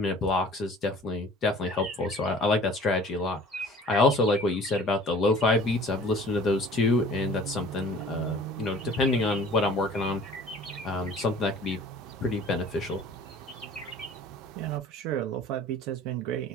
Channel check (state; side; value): normal; both; correlation 0.48